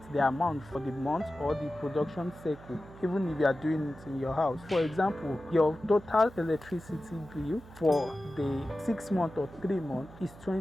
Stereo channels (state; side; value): noise; right; hum, 19 dB below the sound